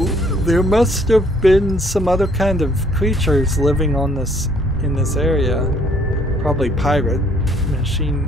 there must have been some other kind of creatures living on in this area. Probably pirate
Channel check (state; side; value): normal; both; correlation 0.63